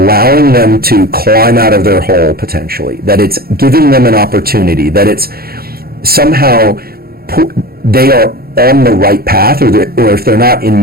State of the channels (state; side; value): late; left; 0.44 ms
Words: them to climb out of their hole potentially, that it's giving them an opportunity, that it's somehow they are on the right path, or if they're not in